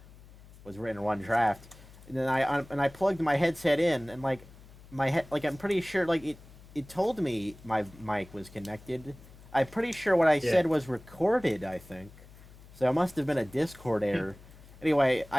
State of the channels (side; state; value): left; noise; hum, 21 dB below the sound